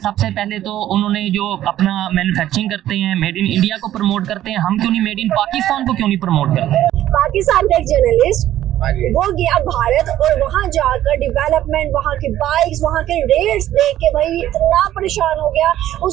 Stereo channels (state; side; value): quieter; left; 12.8 dB